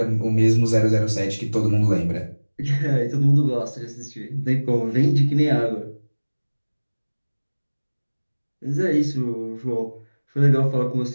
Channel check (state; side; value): inverted; both; correlation -1.00